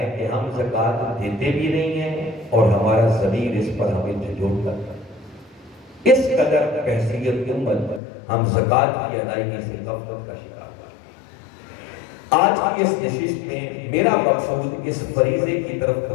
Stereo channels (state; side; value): drops out; right; at 8.0 s